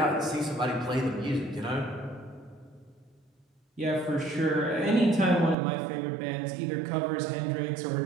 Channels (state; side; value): drops out; left; at 5.6 s